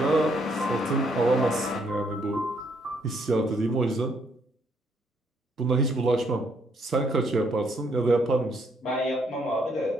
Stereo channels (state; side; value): normal; both; correlation 0.70